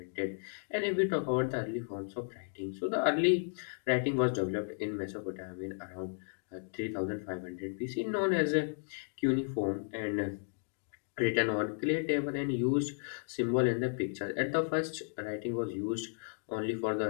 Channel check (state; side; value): silent; right; digital silence